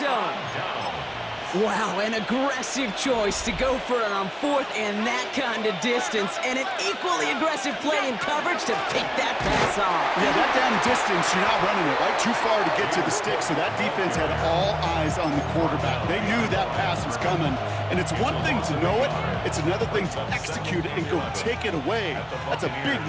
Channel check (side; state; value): both; identical; correlation 1.00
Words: zone. Wow, an aggressive choice to go for it on 4th and that kind of distance, and an equally aggressive play in coverage to pick that pass off. Yeah, that down distance, you're not running it right too far to get to the stick, so that defense had all eyes on the quarterback. They knew that pass was coming, and it's one thing to know it, it's another thing to execute it and go take it away. That's a big